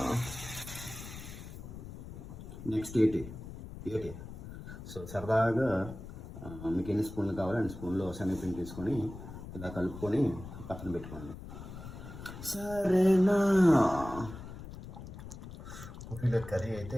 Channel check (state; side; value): noise; left; rumble, 12 dB below the sound